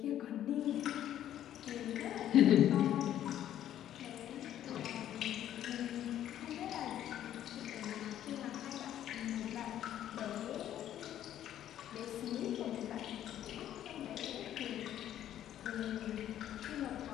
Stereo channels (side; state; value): right; quieter; 11.5 dB